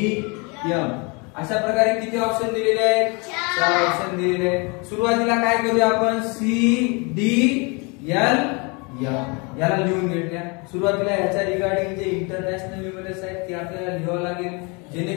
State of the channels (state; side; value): quieter; right; 30.6 dB